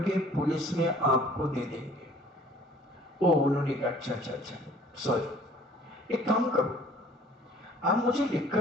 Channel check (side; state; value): both; normal; correlation 0.53